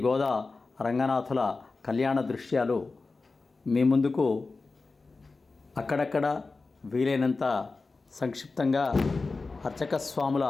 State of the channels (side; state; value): right; quieter; 3.9 dB